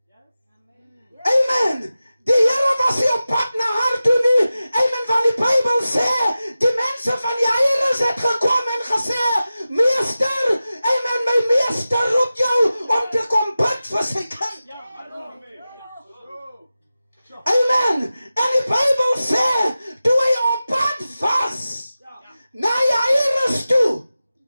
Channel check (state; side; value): inverted; both; correlation -0.95